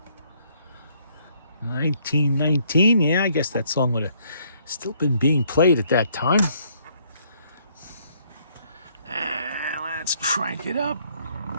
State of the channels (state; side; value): inverted; both; correlation -0.67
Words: 1919, yeah, I guess that song would have still been being played at that time. Let's crank it up.